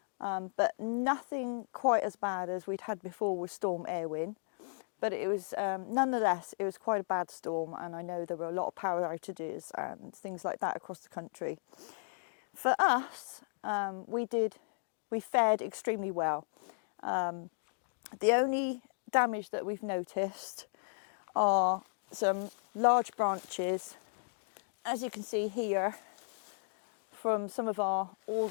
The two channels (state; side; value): silent; right; digital silence